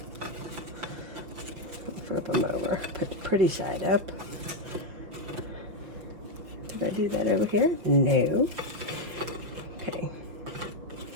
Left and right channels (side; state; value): left; late; 6.0 ms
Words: Flip them over, put the pretty side up. Did I do that over here? No. Okay.